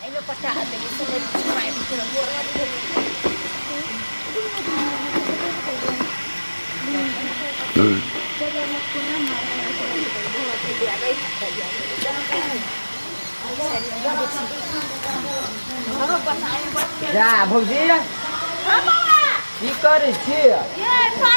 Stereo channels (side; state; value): both; inverted; correlation -1.00